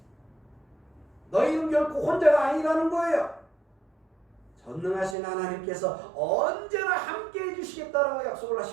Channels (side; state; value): left; drops out; at 5.2 s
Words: 너희는 결코 혼자가 아니라는 거예요. 전능하신 하나님께서 언제나 함께 해주시겠다라고 약속을